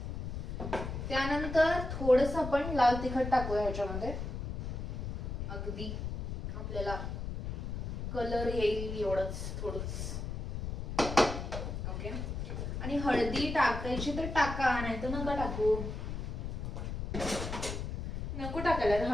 त्यानंतर थोडस आपण लाल तिखट टाकूया ह्याच्यामध्ये. अगदी आपल्याला कलर येईल एवढंच, थोडंच. ओके, आणि हळदी टाकायची तर टाका, नाही तर नका टाकू. नको टाकायला,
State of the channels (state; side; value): noise; left; rumble, 4 dB below the sound